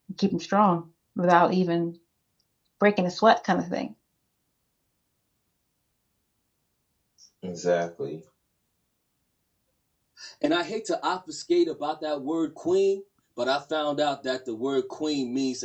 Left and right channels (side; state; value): both; identical; correlation 1.00